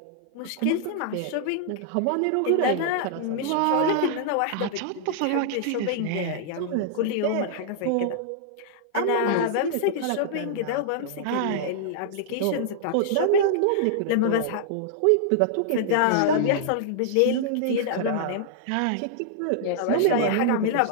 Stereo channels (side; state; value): both; different; correlation -0.01